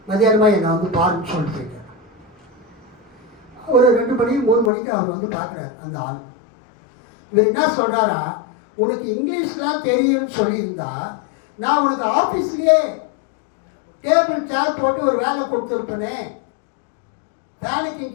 மதியானமாக என்னை வந்து பாருன்னு சொல்லிட்டு போயிட்டார். ஒரு 2 மணி 3 மணிக்கு அவர் வந்து பார்க்குறாரு அந்த ஆள். இவர் என்ன சொல்கிறாரா, உனக்கு இங்கிலீஷ்லாம் தெரியும்னு சொல்லியிருந்தா நான் உனக்கு ஆஃபீஸ்லேயே டேபிள் சேர் போட்டு ஒரு வேலை கொடுத்துருப்பேனே, ஃபேனுக்கு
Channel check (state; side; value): drops out; right; at 4.7 s